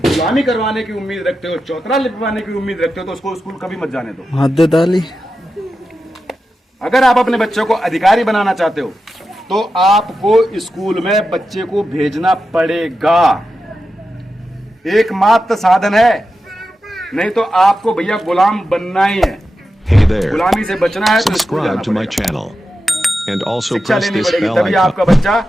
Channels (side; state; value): both; normal; correlation 0.90